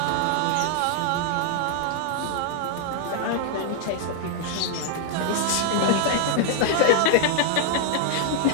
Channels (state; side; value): different; both; correlation -0.01